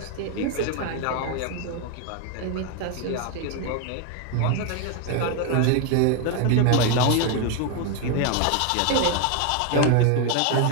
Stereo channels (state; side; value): different; both; correlation 0.01